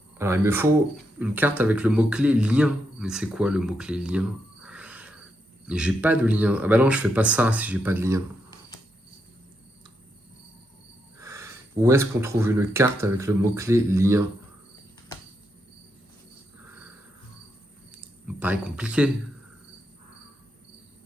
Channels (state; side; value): normal; both; correlation 0.82